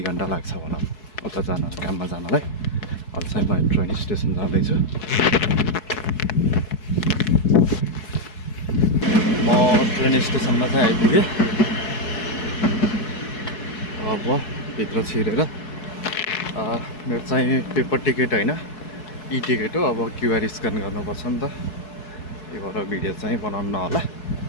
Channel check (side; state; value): right; late; 4.7 ms